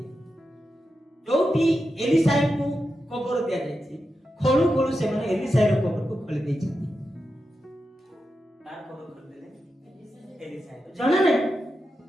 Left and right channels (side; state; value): both; normal; correlation 0.89